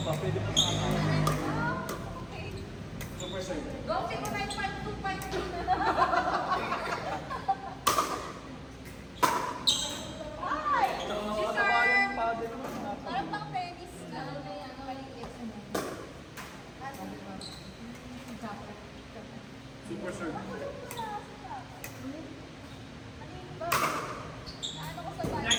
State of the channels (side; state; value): both; identical; correlation 1.00